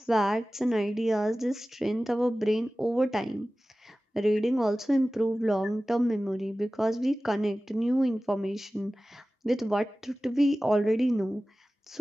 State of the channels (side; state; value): both; normal; correlation 0.96